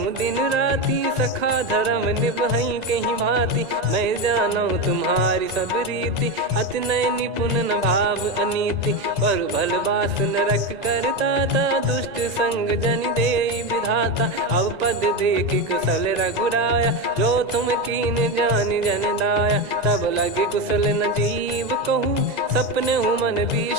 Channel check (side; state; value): left; late; 2.0 ms